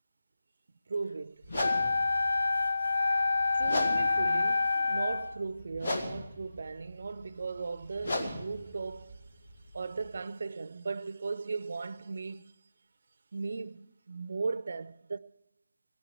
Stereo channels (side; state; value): both; inverted; correlation -0.92